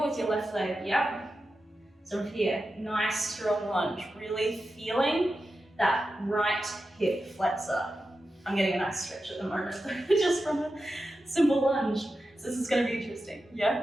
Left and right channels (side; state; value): both; normal; correlation 0.91